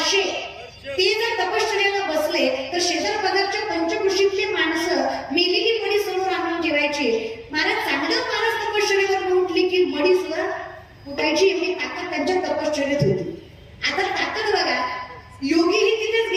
ते जर तपश्चर्याला बसले तर शेजार पदार्थच्या पंचकृषीतली माणसं मेलेली मडी समोर आणून ठेवायची. महाराज चांगलं महाराज तपश्चर्यावर उठली की मडी सुद्धा उठायची. एवढी ताकद त्यांच्या तपश्चर्यात होती. आता ताकद बघा, योगीही तिथेच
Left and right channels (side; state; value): both; identical; correlation 1.00